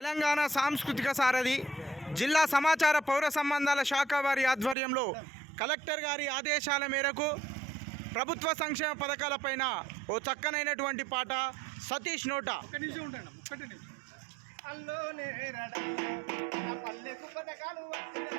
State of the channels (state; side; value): drops out; left; at 4.8 s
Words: తెలంగాణ సాంస్కృతిక సారథి జిల్లా సమాచార పౌర సంబంధాల శాఖ వారి ఆధ్వర్యంలో కలెక్టర్ గారి ఆదేశాల మేరకు ప్రభుత్వ సంక్షేమ పథకాలపైన ఓ చక్కనైనటువంటి పాట సతీష్ నోట. అల్లోనే రడ నా పల్లెకు పథకాలు